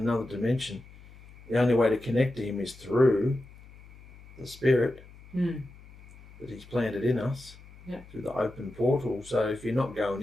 dimension. The only way to connect to him is through the spirit that he's planted in us, through the open portal. So if you're not going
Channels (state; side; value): noise; left; hum, 21 dB below the sound